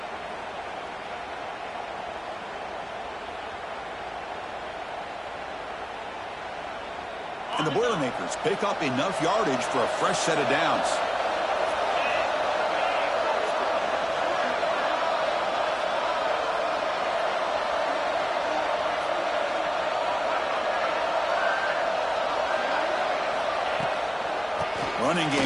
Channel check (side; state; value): both; identical; correlation 1.00